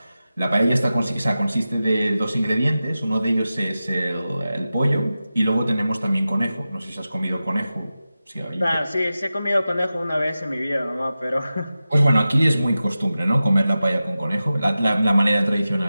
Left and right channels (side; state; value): both; inverted; correlation -0.94